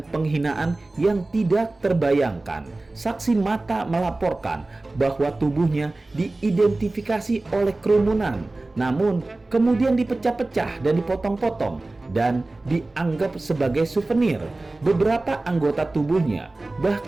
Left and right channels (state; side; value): quieter; left; 3.0 dB